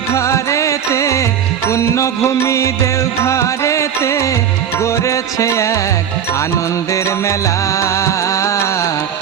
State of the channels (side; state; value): left; quieter; 8.8 dB